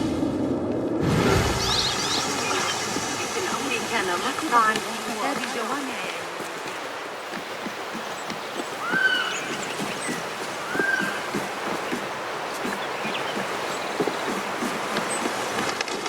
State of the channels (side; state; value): both; identical; correlation 1.00